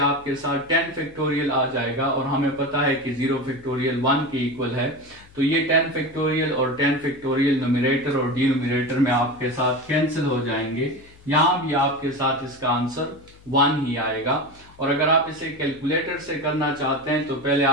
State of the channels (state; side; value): noise; left; hum, 25 dB below the sound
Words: साथ 10 फैक्टोरियल आ जाएगा और हमें पता है कि 0 फैक्टोरियल 1 के इक्वल है, तो ये 10 फैक्टोरियल और 10 फैक्टोरियल न्यूमरेटर और डिनोमिनेटर में आपके साथ कैंसिल हो जाएंगे। यहां भी आपके साथ इसका आंसर 1 ही आएगा। और अगर आप इसे कैलकुलेटर से करना चाहते हैं तो पहले